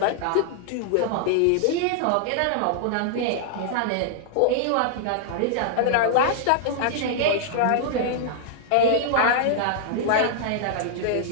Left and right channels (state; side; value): different; both; correlation -0.01